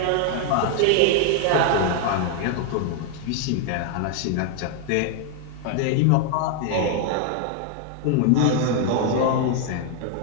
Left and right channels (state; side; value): different; both; correlation 0.00